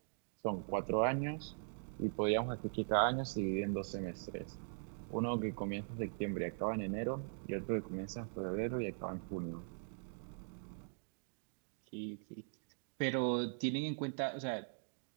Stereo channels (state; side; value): silent; left; digital silence